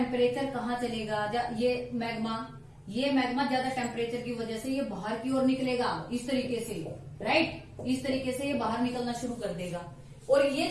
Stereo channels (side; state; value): both; identical; correlation 1.00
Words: कहाँ चलेगा, ये मैग्मा ज्यादा टेम्परेचर की वजह से ये बाहर की ओर निकलेगा, इस तरीके से, राइट, इस तरीके से ये बाहर निकलना शुरू कर देगा। और ये